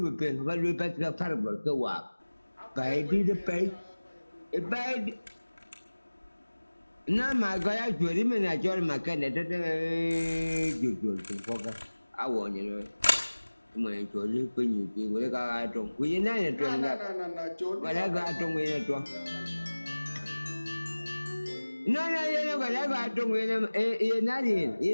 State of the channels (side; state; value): both; inverted; correlation -1.00